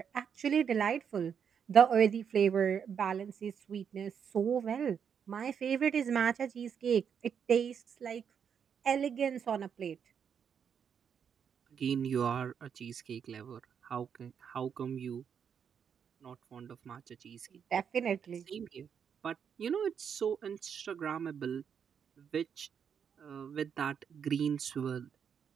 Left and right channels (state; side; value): quieter; left; 7.4 dB